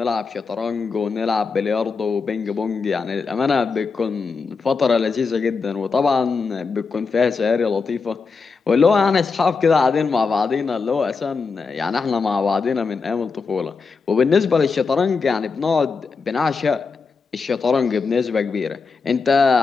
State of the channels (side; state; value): right; quieter; 4.8 dB